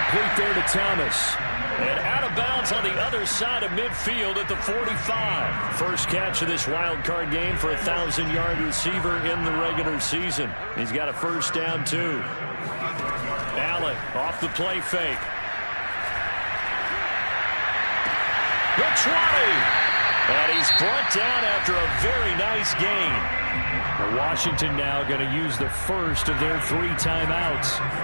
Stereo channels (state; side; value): inverted; both; correlation -1.00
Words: there to Thomas. And out of bounds on the other side of midfield at the 45. First catch of this wild card game for a 1,000-yard receiver in the regular season. He's got a first down, too. Allen off the play fake. The 20. And he's brought down after a very nice gain. Washington now going to use the first of their 3 timeouts